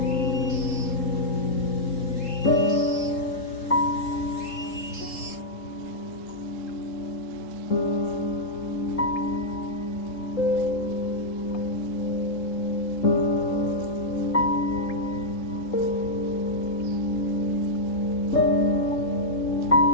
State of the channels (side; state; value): right; late; 3.8 ms